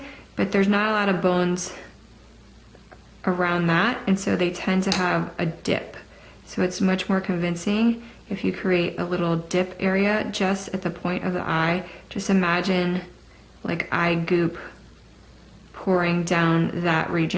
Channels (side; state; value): both; identical; correlation 1.00